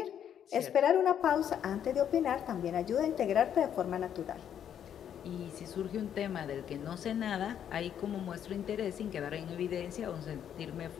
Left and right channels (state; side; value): quieter; right; 9.3 dB